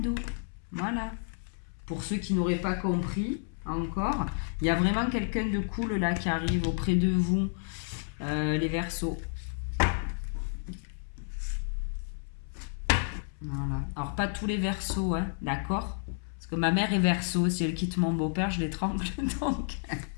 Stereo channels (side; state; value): right; silent; 57 dB below the other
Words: Voilà. Pour ceux qui n'auraient pas compris encore, il y a vraiment quelqu'un de cool là qui arrive auprès de vous, les Verseaux. Voilà. Alors, pas tous les Verseaux, hein, d'accord? Parce que ma mère est Verseau, si elle quitte mon beau-père, je l'étrangle, donc